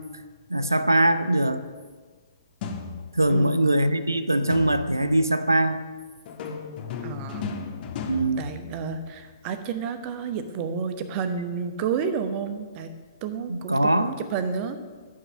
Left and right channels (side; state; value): both; inverted; correlation -0.79